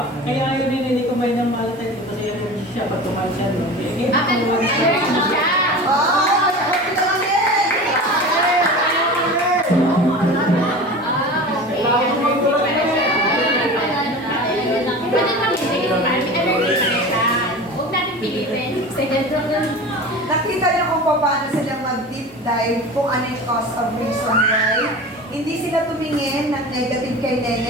kaya ayaw ni Nene kumain ng malatin kasi ayaw siya pag kumain siya. No? Allergy siya! Ah! Kita lang din! Pwede lang hindi. Allergy siya. Huwag natin pilitin. Nakita niyo kung paano sila mag-deep dive kung ano yung cause of reason why. Hindi sila tumingin ng negative kay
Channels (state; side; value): normal; both; correlation 0.34